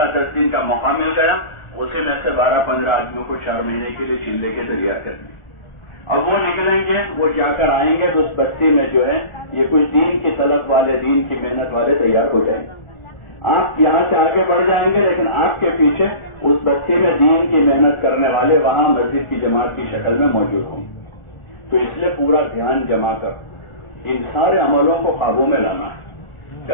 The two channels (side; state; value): right; late; 1.4 ms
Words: 10 دن کا موقع مل گیا، اسی میں سے 12-15 آدمیوں کو 4 مہینے کے لیے چلے کے تیار کر دیا۔ اب وہ نکلیں گے، وہ جا کر آئیں گے تو اس بستی میں جو ہے یہ کچھ دین کی طلب والے، دین کی محنت والے تیار ہو جائیں گے۔ آپ یہاں سے آگے بڑھ جائیں گے لیکن آپ کے پیچھے اس بستی میں دین کی محنت کرنے والے وہاں مسجد کی جماعت کی شکل میں موجود ہوں گے۔ تو اس لیے پورا دھیان جما کر ان سارے عملوں کو قابو میں لانا ہے،